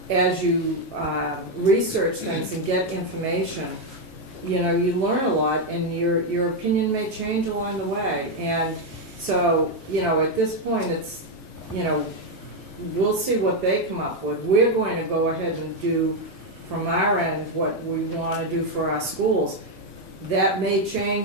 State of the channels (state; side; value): normal; both; correlation 0.03